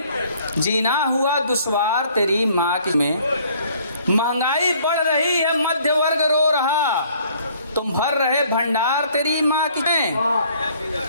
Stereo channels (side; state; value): both; inverted; correlation -0.60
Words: जीना हुआ दुश्वार तेरी माँ की में। महंगाई बढ़ रही है, मध्य वर्ग रो रहा, तुम भर रहे भंडार तेरी माँ की में।